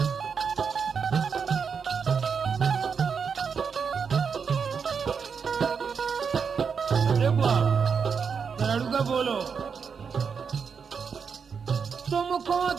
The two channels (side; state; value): left; quieter; 6.1 dB